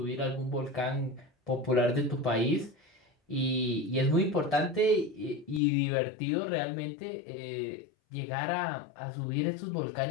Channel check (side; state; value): right; drops out; at 5.6 s